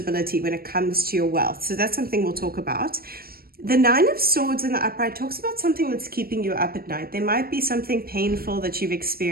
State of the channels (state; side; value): late; left; 0.44 ms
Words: when it comes to your wealth. So that's something we'll talk about. The Nine of Swords in the upright talks about something that's keeping you up at night. There might be something painful that you've